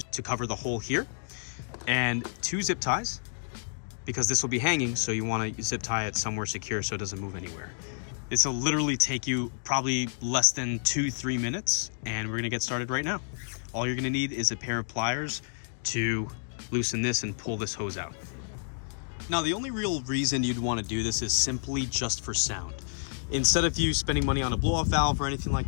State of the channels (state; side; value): silent; right; digital silence